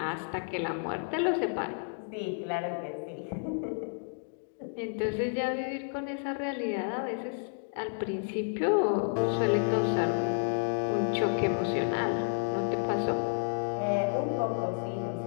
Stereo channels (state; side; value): silent; right; digital silence